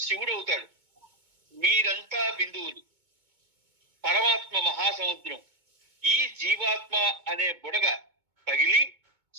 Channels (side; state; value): left; late; 2.2 ms